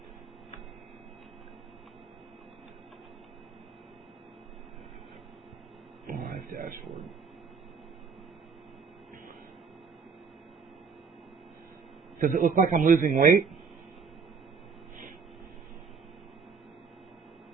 Live dashboard. Does it look like I'm losing weight?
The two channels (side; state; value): left; quieter; 5.4 dB